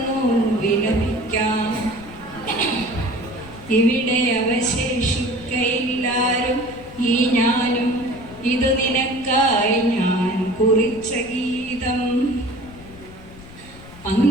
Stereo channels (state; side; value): noise; left; rumble, 19 dB below the sound